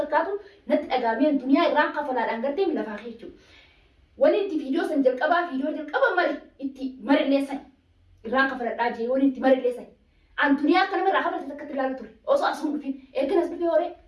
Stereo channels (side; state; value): both; identical; correlation 1.00